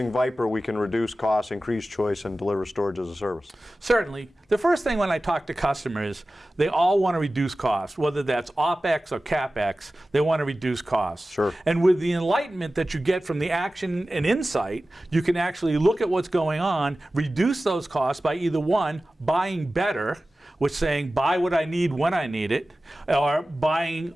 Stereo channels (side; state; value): both; normal; correlation 0.96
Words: Viper we can reduce costs, increase choice, and deliver storage as a service. Certainly. The first thing when I talk to customers, they all want to reduce costs, whether that's OpEx or CapEx, they want to reduce costs. Sure. And with the enlightenment that you get from the action and insight, you can actually look at what's going on, reduce those costs by either one, buying better, which saying buy what I need when I need it, or buying